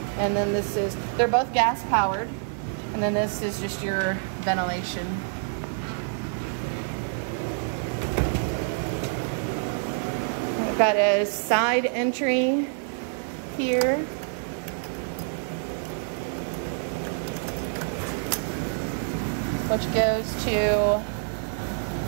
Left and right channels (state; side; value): silent; left; 60 dB below the other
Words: And then this is, they're both gas powered. And then this is just your ventilation. We've got a side entry here. Which goes to